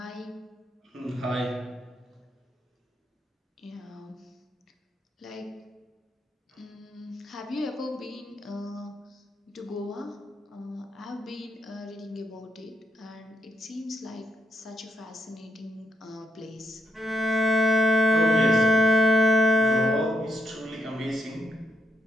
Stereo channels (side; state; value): both; normal; correlation 0.78